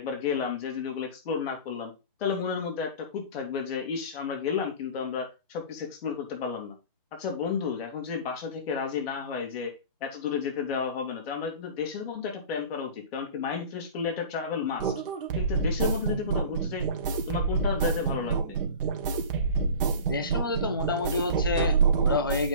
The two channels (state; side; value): inverted; both; correlation -0.37